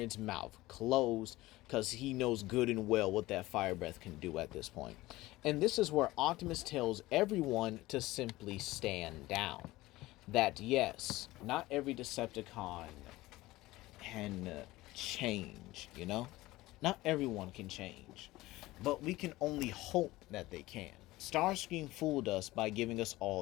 mouth closed, because he knows good and well what that fire breath can do at this point. And this is where Optimus tells everyone to simply stand down. That yes, not every Decepticon can change, Not everyone can change. But we can only hope that they can. Starscream fooled us by giving us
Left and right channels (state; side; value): quieter; right; 18.5 dB